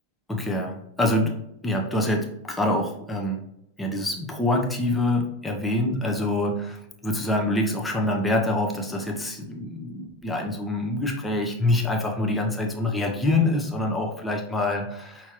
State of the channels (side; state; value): both; normal; correlation 0.31